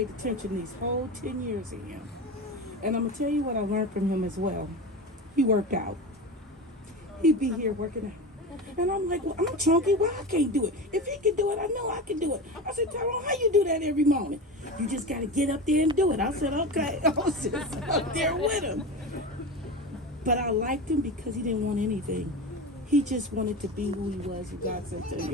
attention these whole 10 years of him. And I'm going to tell you what I learned from him as well. He worked out. He'd be here working out. And I'm like, well, I'm chunky. Why I can't do it? If he can do it, I know I can do it. I said, Tyrone, how you do that every morning? You just got to get up there and do it. I said, okay. I was just up there with him. But I liked him because he didn't want anything. He just wanted to be who he was, who God sent him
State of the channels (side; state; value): both; normal; correlation 0.26